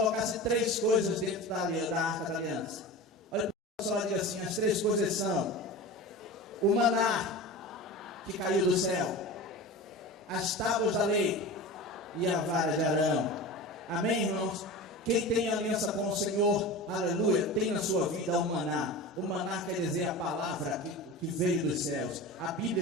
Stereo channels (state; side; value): normal; both; correlation 0.31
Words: 3 coisas dentro da arca da aliança. Olha, o pessoal diz assim, as 3 coisas são o maná que caiu do céu, as tábuas da lei e a vara de Arão. Amém, irmãos? Quem tem aliança com o Senhor, aleluia, tem na sua vida o maná. O maná quer dizer a palavra que veio dos céus, a